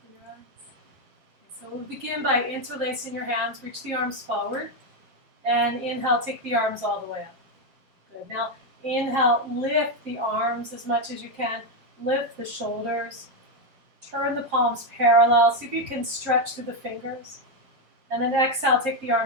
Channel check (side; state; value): left; late; 7.5 ms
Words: your eyes. Okay, so we'll begin by interlacing your hands. Reach the arms forward. And inhale, take the arms all the way up. Good. Now inhale, lift the arms as much as you can. Lift the shoulders. Turn the palms parallel. See if you can stretch through the fingers. And then exhale, take the